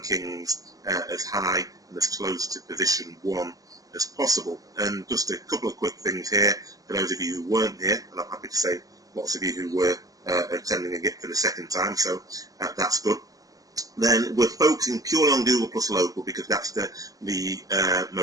as high and as close to position 1 as possible. And just a couple of quick things here for those of you who weren't here, and I'm happy to say lots of you who were attending again for the second time, so that's good. Then we're focusing purely on Google Plus Local because that's the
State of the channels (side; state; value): left; late; 0.17 ms